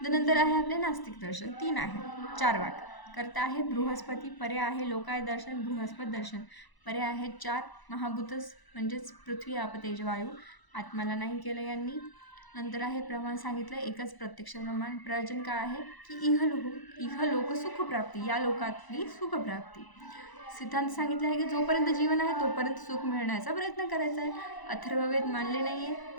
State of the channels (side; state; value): right; late; 1.0 ms